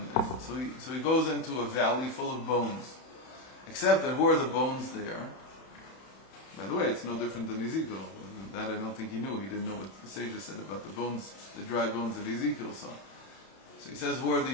so he goes into a valley full of bones. Except that who are the bones there? By the way, it's no different than Ezekiel. That I don't think he knew. He didn't know what the sages said about the bones, the dry bones that Ezekiel saw. So he says, who are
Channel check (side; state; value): right; late; 31 ms